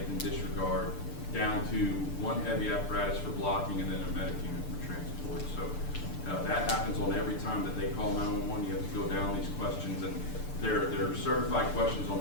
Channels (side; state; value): right; late; 6.8 ms